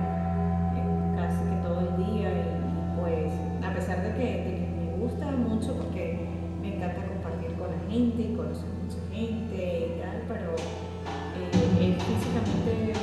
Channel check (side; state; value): both; identical; correlation 1.00